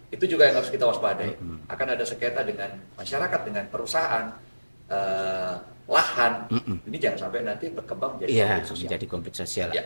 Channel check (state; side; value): inverted; both; correlation -1.00